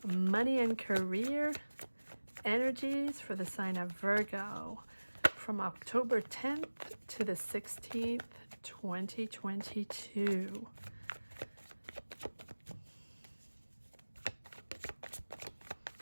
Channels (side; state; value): both; inverted; correlation -1.00